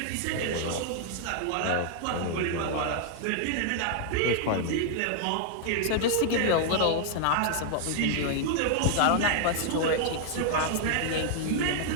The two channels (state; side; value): different; both; correlation 0.00